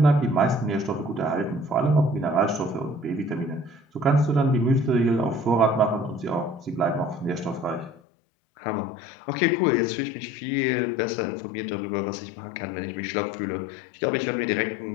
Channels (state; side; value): drops out; right; at 8.0 s